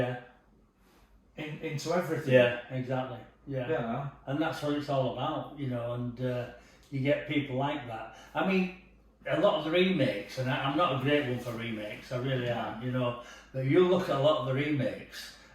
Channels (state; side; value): identical; both; correlation 1.00